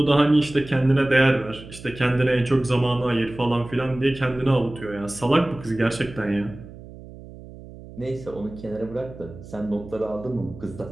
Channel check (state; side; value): noise; right; hum, 16 dB below the sound